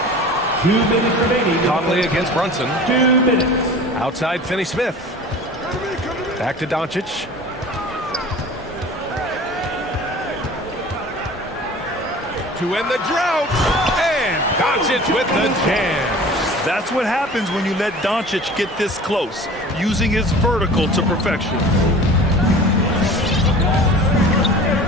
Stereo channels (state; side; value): normal; both; correlation 0.41